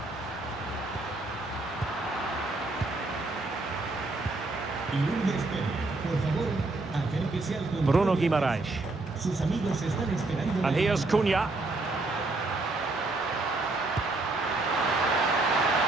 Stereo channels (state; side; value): quieter; left; 3.1 dB